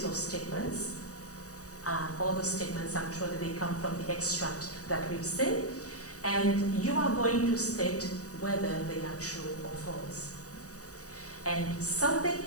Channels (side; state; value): right; late; 0.66 ms